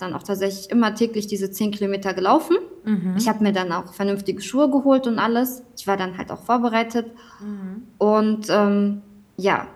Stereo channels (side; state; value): both; identical; correlation 1.00